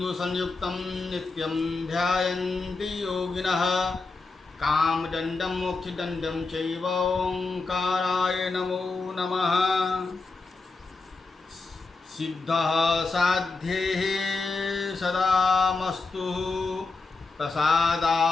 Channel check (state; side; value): quieter; right; 3.9 dB